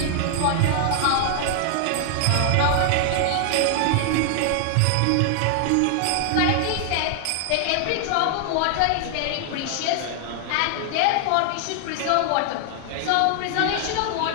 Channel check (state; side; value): different; both; correlation 0.00